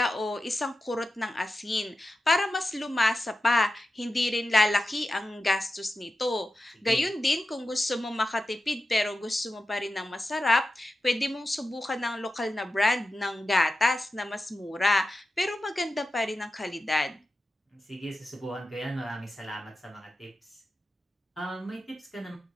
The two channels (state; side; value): normal; both; correlation 0.92